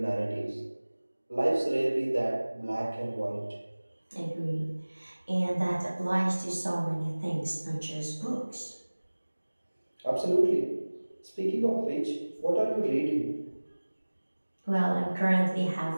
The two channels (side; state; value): both; inverted; correlation -1.00